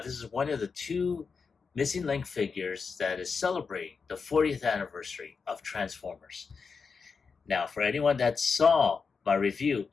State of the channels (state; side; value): quieter; right; 5.3 dB